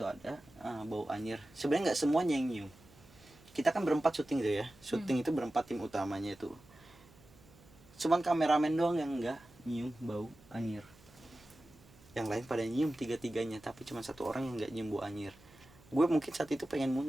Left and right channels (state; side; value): noise; right; hum, 25 dB below the sound